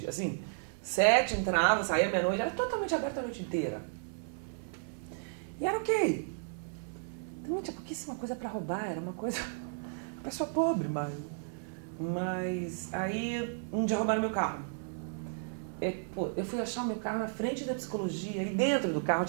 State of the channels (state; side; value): silent; left; digital silence